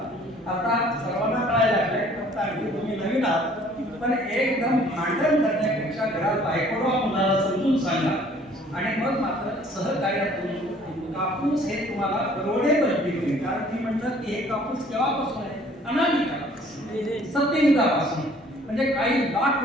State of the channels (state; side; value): normal; both; correlation 0.56